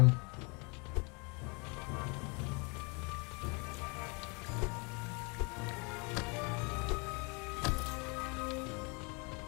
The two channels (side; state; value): right; quieter; 31.8 dB